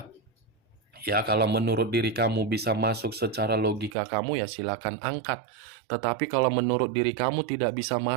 Ya, kalau menurut diri kamu bisa masuk secara logika kamu, ya silakan angkat. Tetapi kalau menurut diri kamu tidak bisa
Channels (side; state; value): left; drops out; at 4.0 s